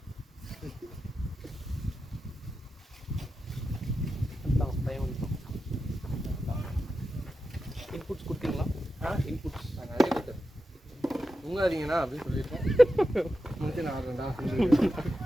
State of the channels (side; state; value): both; normal; correlation 0.90